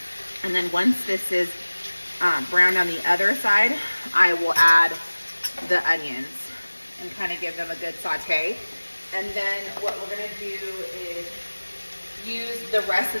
And then once this is browned on the other side, I will add the onions and kind of give them a good saute. And then what we're gonna do is use the rest of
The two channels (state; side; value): inverted; both; correlation -1.00